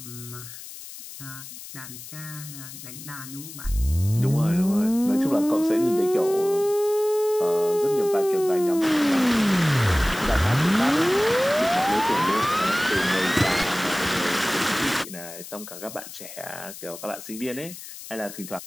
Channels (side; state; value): left; noise; hiss, 14 dB below the sound